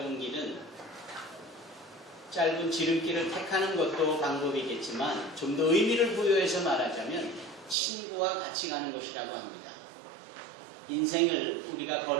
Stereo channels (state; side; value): drops out; left; at 7.8 s